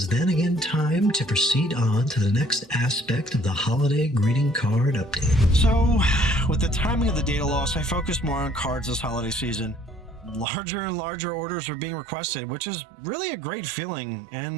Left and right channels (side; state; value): left; drops out; at 10.5 s